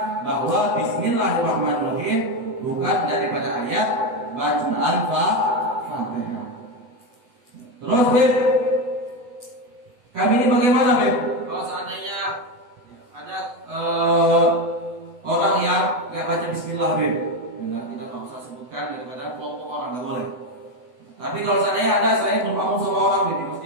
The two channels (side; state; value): left; late; 8.0 ms